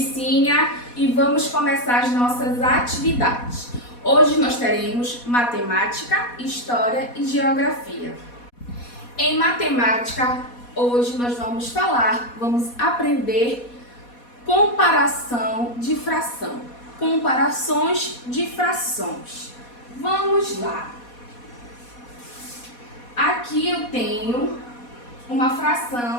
e vamos começar as nossas atividades. Hoje nós teremos matemática, história e geografia. Em matemática, hoje nós vamos aprender comparação de fração, comparações de frações. Vamos lá. Aqui eu tenho uma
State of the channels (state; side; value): late; right; 4.2 ms